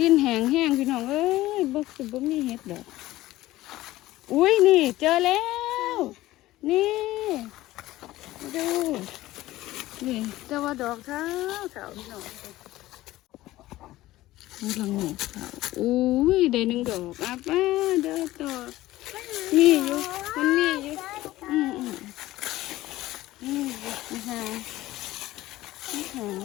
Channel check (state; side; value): quieter; right; 16.5 dB